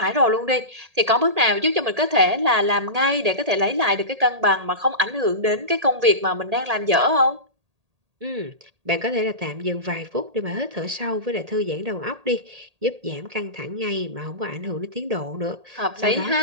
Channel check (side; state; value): left; late; 1.8 ms